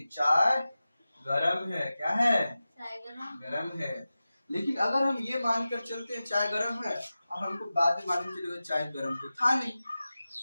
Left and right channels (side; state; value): both; inverted; correlation -0.95